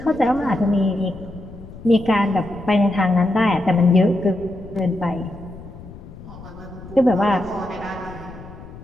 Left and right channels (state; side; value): noise; left; rumble, 16 dB below the sound